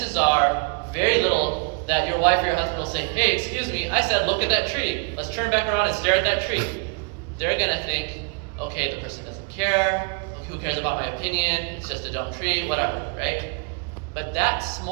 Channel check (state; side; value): quieter; left; 34.2 dB